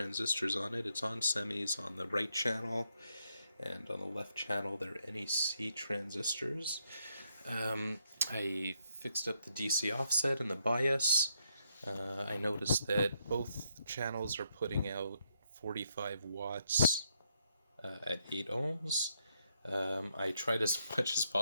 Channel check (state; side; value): inverted; both; correlation -0.77